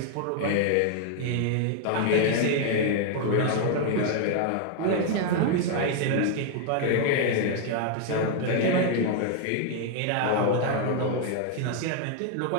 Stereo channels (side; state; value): both; different; correlation 0.00